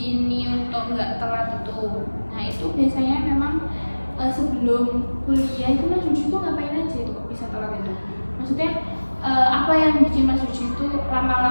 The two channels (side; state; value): both; inverted; correlation -1.00